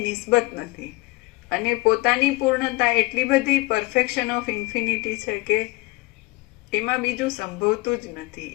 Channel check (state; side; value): quieter; right; 23.8 dB